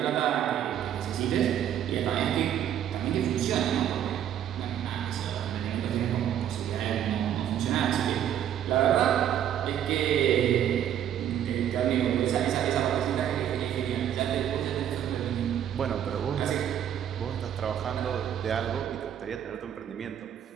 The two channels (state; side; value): quieter; left; 10.2 dB